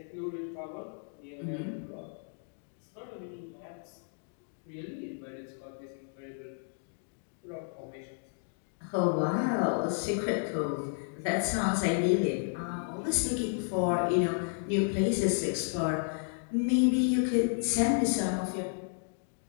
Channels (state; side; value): silent; right; 56 dB below the other